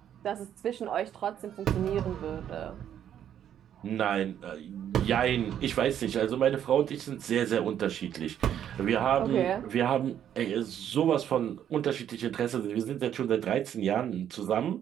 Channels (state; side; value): quieter; left; 9.9 dB